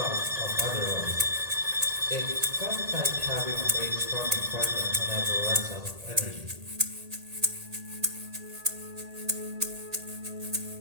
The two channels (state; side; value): late; left; 1.8 ms